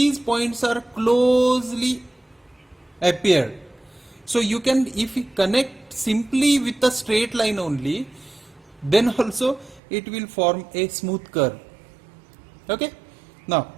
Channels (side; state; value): left; drops out; at 9.8 s